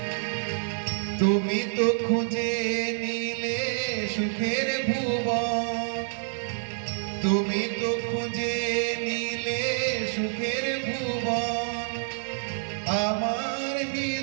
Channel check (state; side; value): silent; left; 60 dB below the other